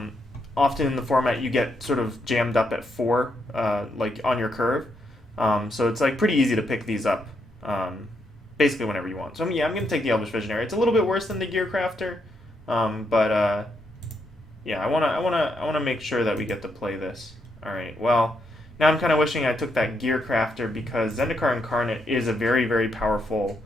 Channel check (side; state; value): both; normal; correlation 0.79